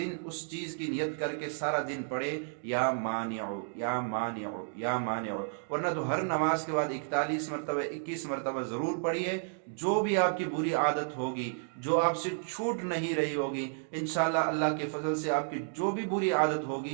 اس چیز کی نیت کر کے سارا دن پڑھے یا مانع یا مانع یا مانع، ورنہ تو ہر نماز کے بعد 41 مرتبہ 21 مرتبہ ضرور پڑھیے۔ جو بھی آپ کی بری عادت ہوگی، جو آپ سے چھوٹ نہیں رہی ہوگی، انشاءاللہ اللہ کے فضل سے آپ کی جو بھی بری عادت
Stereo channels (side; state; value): left; silent; digital silence